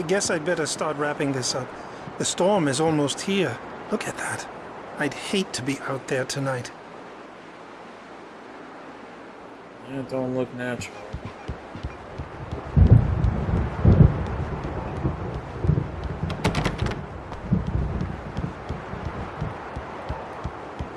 guess I'd better start wrapping this up. The storm is almost here. Look at that. I'd hate to be out there tonight. Yeah, it don't look natural.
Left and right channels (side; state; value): both; identical; correlation 1.00